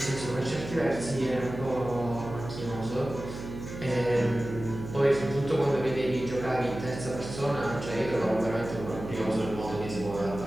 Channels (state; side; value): noise; right; hum, 9 dB below the sound